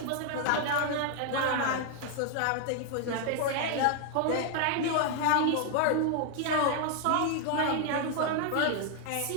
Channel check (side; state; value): both; different; correlation 0.00